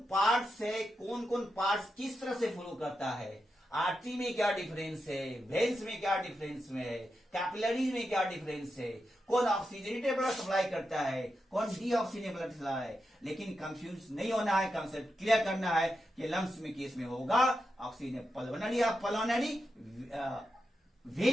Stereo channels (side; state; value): both; normal; correlation 0.87